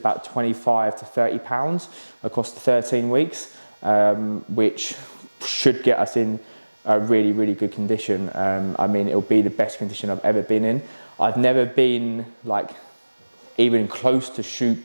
25 to 30 pounds across the 13 weeks, which should get us in a really, really good condition. I mean, it'll be the best condition I've ever been in. I've never been like even close to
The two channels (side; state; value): both; inverted; correlation -1.00